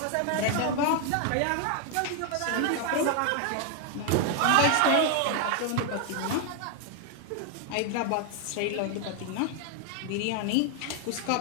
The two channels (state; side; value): different; both; correlation 0.00